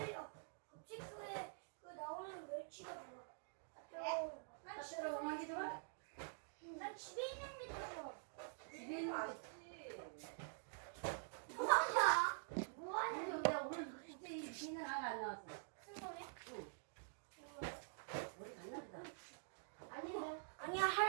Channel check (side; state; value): left; silent; digital silence